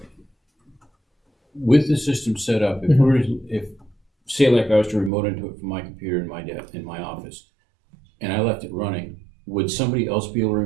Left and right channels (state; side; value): drops out; left; at 5.1 s